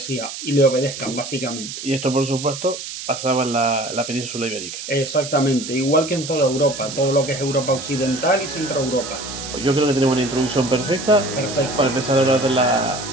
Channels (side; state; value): right; noise; hiss, 9 dB below the sound